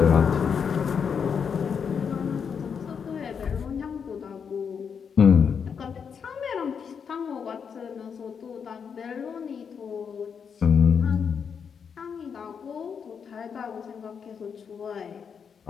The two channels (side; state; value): right; quieter; 6.7 dB